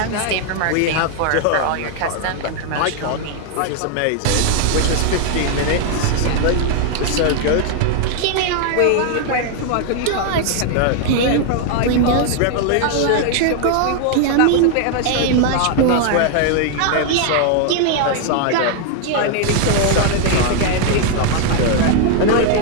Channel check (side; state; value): both; different; correlation 0.00